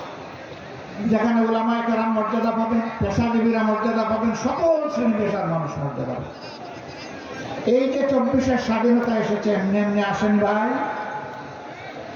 যেখানে উলামায়ে কেরাম মর্যাদা পাবেন, পেশাজীবীরা মর্যাদা পাবেন, সকল শ্রেণী পেশার মানুষ মর্যাদা পাবেন। এই যে 24-এর স্বাধীনতা এসেছে এমনি এমনি আসেনি ভাই।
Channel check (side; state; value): both; identical; correlation 1.00